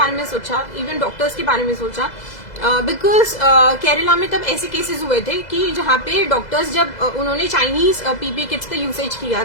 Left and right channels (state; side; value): late; right; 2.0 ms